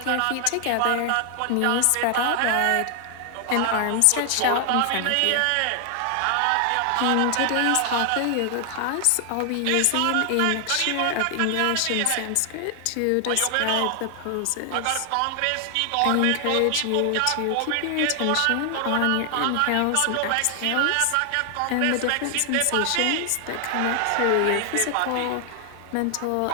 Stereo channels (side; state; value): both; different; correlation 0.00